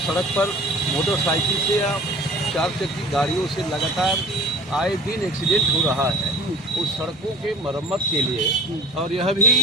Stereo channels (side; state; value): both; normal; correlation 0.42